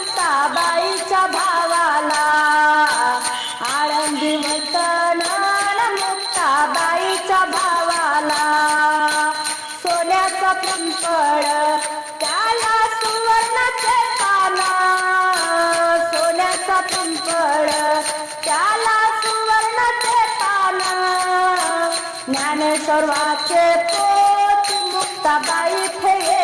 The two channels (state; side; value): identical; both; correlation 1.00